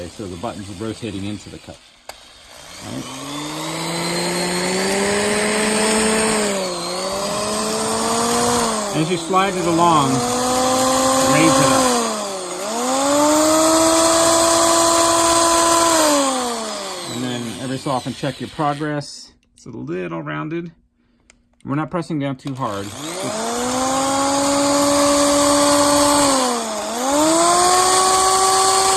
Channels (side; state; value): both; identical; correlation 1.00